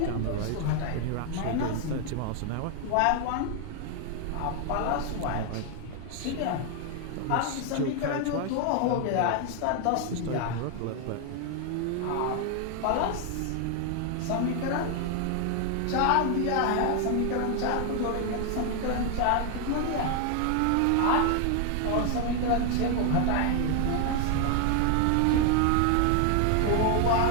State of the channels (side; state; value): both; different; correlation 0.00